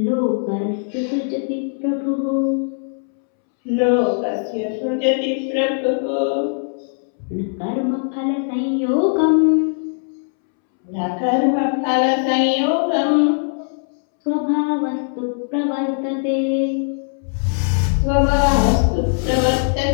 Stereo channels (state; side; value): silent; right; 66 dB below the other